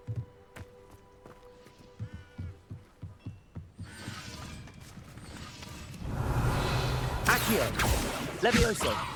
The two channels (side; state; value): both; identical; correlation 1.00